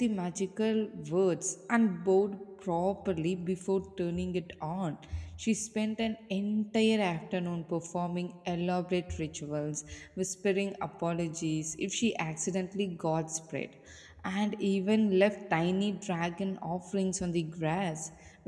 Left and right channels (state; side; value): identical; both; correlation 1.00